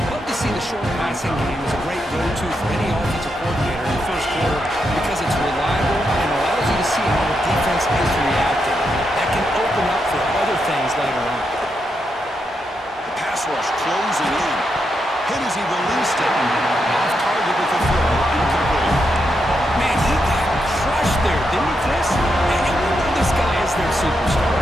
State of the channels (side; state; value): both; normal; correlation 0.83